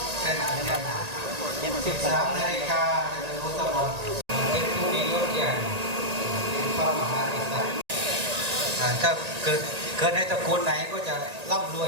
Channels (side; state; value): left; late; 1.8 ms